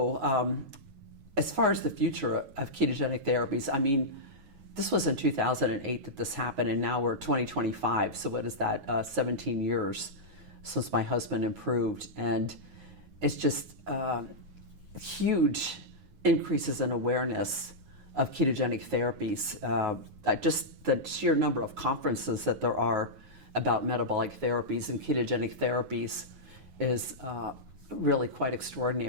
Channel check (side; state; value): left; late; 9.4 ms